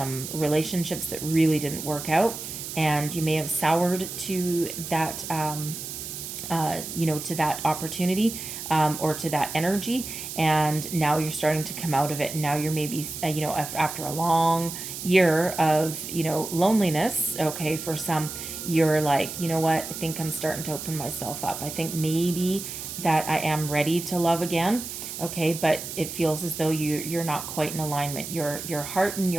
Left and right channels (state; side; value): noise; right; hiss, 8 dB below the sound